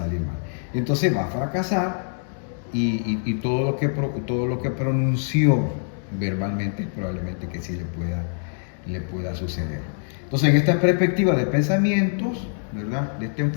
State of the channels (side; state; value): right; silent; digital silence